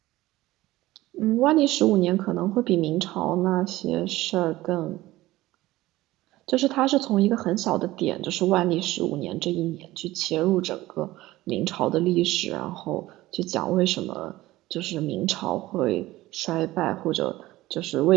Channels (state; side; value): quieter; left; 17.3 dB